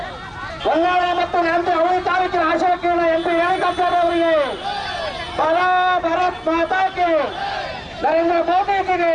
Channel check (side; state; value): both; identical; correlation 1.00